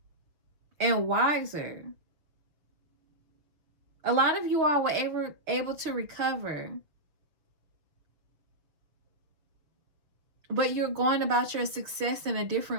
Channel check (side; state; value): left; late; 6.4 ms